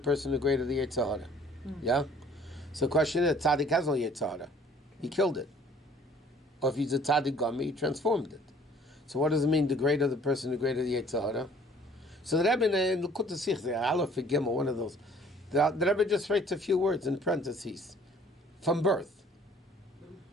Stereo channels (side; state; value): both; normal; correlation 0.55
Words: the greater the Yetzer Hara. Yeah? So the question is, Tzaddik has no Yetzer Hara. He killed it. Or if he's a Tzaddik Gami, he transformed it. So what does it mean, the greater the person, the greater the Yetzer Hara? So the Rebbe in Likut Sikh, the Aleph Gimel, one of those, the Rebbe just writes a few words in parentheses. From birth.